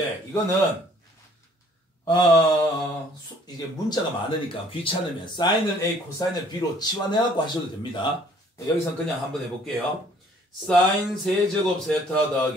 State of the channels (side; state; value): both; normal; correlation 0.58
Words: 이거는 이제 문자가 많으니까 귀찮으면 사인을 A, 코사인을 B로 치환해갖고 하셔도 됩니다. 여기선 그냥 한번 해볼게요. 사인 세제곱 세타